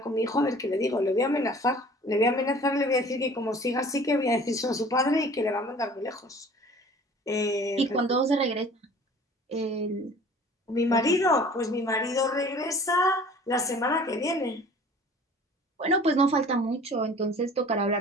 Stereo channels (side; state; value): both; normal; correlation 0.48